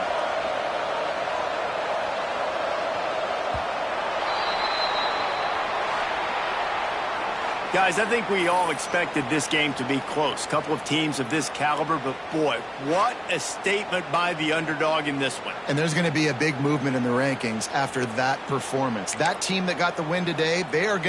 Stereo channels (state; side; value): identical; both; correlation 1.00